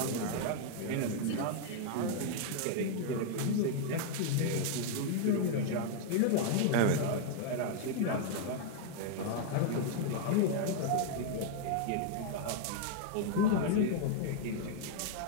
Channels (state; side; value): different; both; correlation 0.00